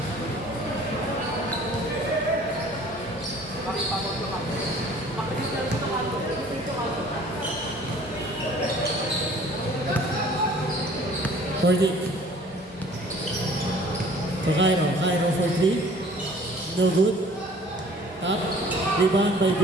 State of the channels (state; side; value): normal; both; correlation 0.52